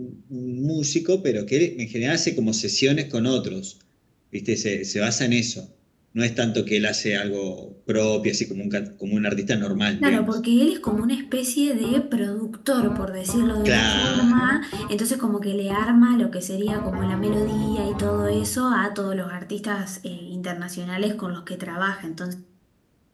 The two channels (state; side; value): identical; both; correlation 1.00